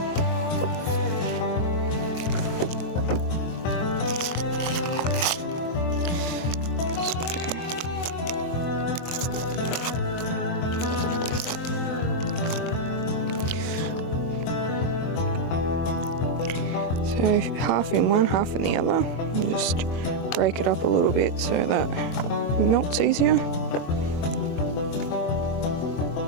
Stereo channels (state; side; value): late; right; 24 ms